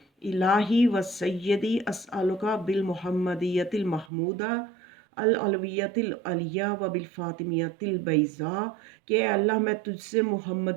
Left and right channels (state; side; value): drops out; left; at 4.1 s